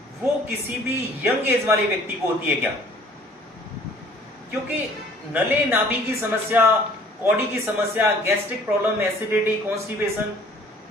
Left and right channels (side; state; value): both; normal; correlation 0.54